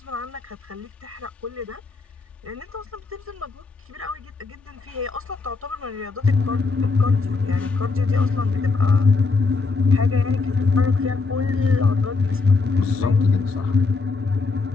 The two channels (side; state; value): right; quieter; 4.1 dB